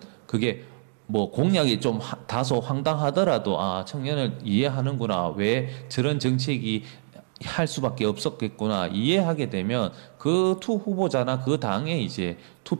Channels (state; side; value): silent; left; digital silence